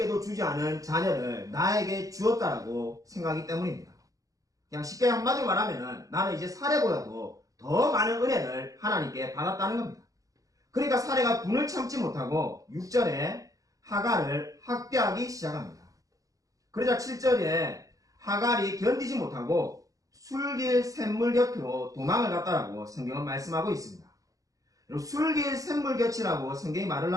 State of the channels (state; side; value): late; left; 0.17 ms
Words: 주지 않은 자녀를 나에게 주었다라고 생각하기 때문입니다. 그냥 쉽게 한마디로 말하면 나는 이제 사레보다도 더 많은 은혜를 하나님께 받았다는 겁니다. 그러니까 사레가 분을 참지 못하고 6절에 하갈을 학대하기 시작합니다. 그러자 7절에 하갈이 견디지 못하고 술길 샘물 곁으로 도망을 갔다라고 성경은 말씀하고 있습니다. 술길 샘물 곁이라고 성경이 말을